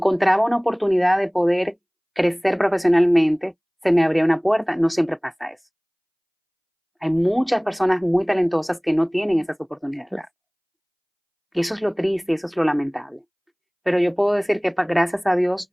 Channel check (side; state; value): both; identical; correlation 1.00